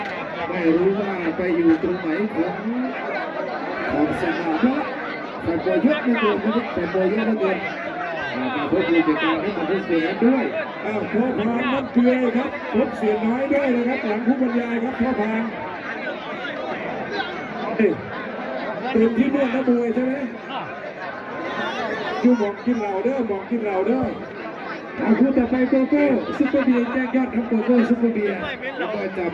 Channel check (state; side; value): identical; both; correlation 1.00